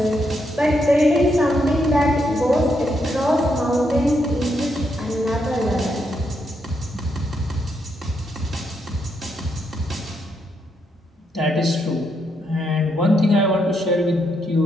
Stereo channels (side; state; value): both; normal; correlation 0.79